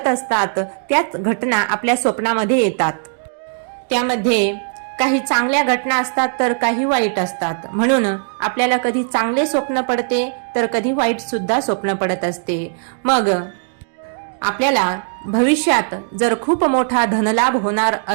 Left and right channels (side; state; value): left; silent; digital silence